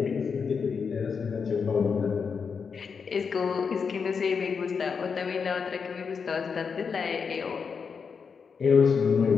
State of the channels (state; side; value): quieter; right; 5.8 dB